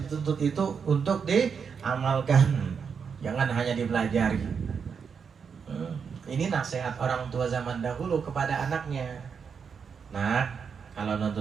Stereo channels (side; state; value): left; quieter; 6.3 dB